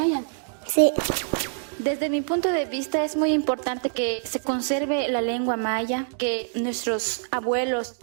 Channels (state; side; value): silent; left; 58 dB below the other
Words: Sí. Desde mi punto de vista es muy importante que se conserve la lengua maya, que nuestros abuelos,